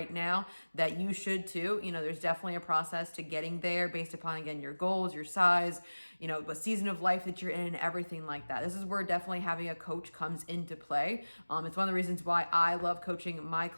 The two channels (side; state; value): both; inverted; correlation -1.00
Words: now, that you should too. There's definitely a process to getting there based upon, again, your goals, your size, what season of life that you're in, everything like that. This is where definitely having a coach comes into play. It's one of the reasons why I love coaching my